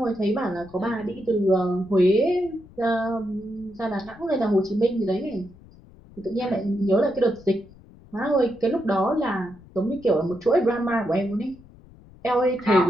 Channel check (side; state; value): left; noise; rumble, 23 dB below the sound